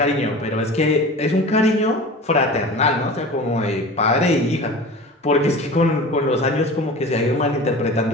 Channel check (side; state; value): both; normal; correlation 0.36